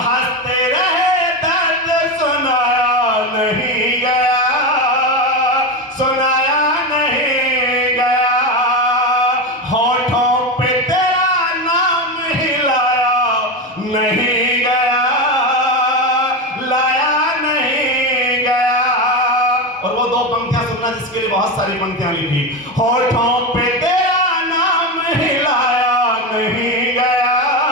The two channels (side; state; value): both; normal; correlation 0.16